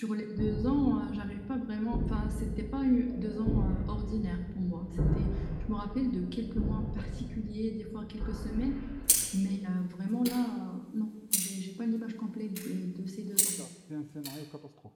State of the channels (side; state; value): both; identical; correlation 1.00